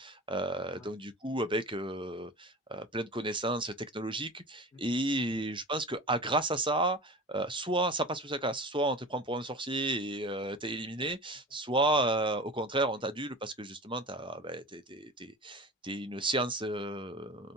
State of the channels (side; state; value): both; normal; correlation 0.35